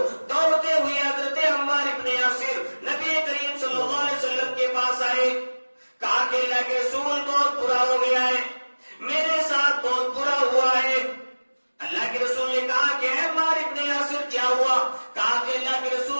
دوڑتے ہوئے حضرت عمار ابن یاسر نبی کریم صلی اللہ علیہ وسلم کے پاس آئے، کہا کہ اللہ کے رسول بہت برا ہو گیا ہے، میرے ساتھ بہت برا ہوا ہے۔ اللہ کے رسول نے کہا کہ اے عمار ابن یاسر کیا ہوا؟ کہا کہ اللہ کے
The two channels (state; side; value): inverted; both; correlation -1.00